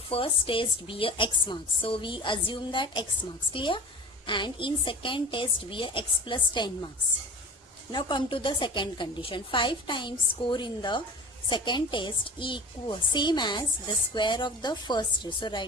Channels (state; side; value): normal; both; correlation 0.36